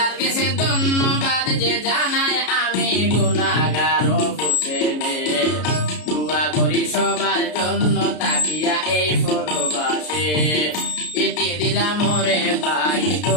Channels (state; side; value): late; right; 33 ms